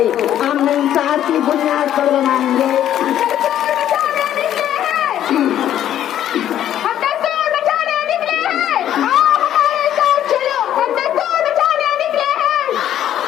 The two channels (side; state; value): right; quieter; 11.2 dB